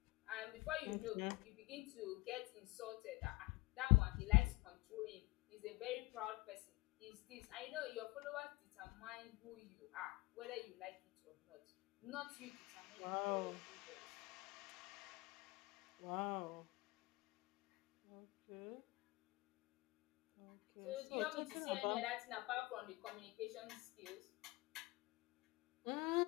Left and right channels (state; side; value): quieter; right; 22.9 dB